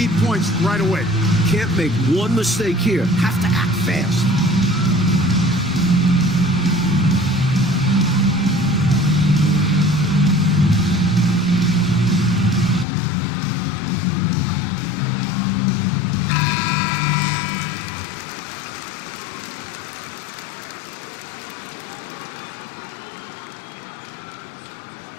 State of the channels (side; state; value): right; drops out; at 12.9 s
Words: points right away. Can't make one mistake here. Have to act fast.